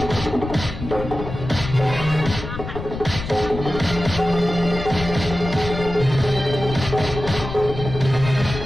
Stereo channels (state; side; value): noise; left; rumble, 8 dB below the sound